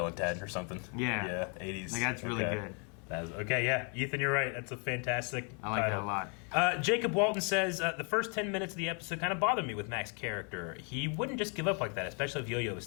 and Ted or something. Yeah. 80s. Like, that's really good. Okay, yeah. Ethan, you're right. That's a fantastic I like title. that a lot. Jacob Walton says, the first 10 minutes of the episode kind of bothered me with Mack's character. He wouldn't just give up like that, especially if Yo-Yo was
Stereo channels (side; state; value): right; quieter; 37.3 dB